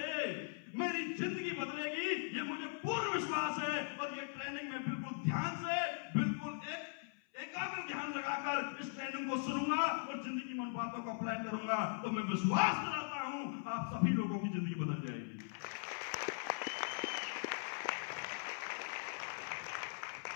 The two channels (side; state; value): right; silent; 51 dB below the other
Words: मेरी जिंदगी बदलेगी, ये मुझे पूर्ण विश्वास है, और ये ट्रेनिंग में बिल्कुल ध्यान से, बिल्कुल एकाग्र ध्यान लगाकर इस ट्रेनिंग को सुनूंगा और जिंदगी में उन बातों को अप्लाई करूंगा, तो मैं विश्वास कराता हूं आप सभी लोगों की जिंदगी बदल जाएगी।